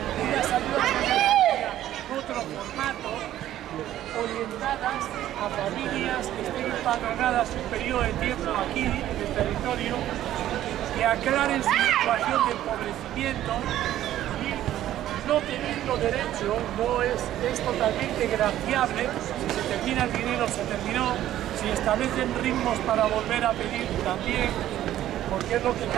unas ayudas de emergencia en otro formato, orientadas a familias que estén empadronadas un periodo de tiempo aquí en el territorio, que aclaren su situación de empobrecimiento y no teniendo derecho, es totalmente graciable. Si se termina el dinero, se terminó. Si establecen ritmos para volver a pedir, también, porque es lo que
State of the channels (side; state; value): left; quieter; 12.8 dB